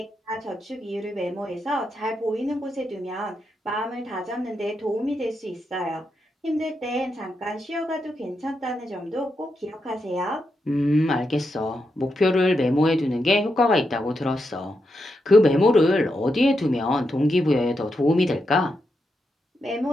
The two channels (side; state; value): both; normal; correlation 0.84